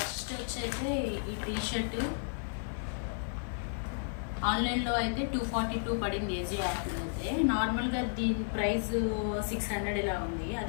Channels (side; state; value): right; silent; digital silence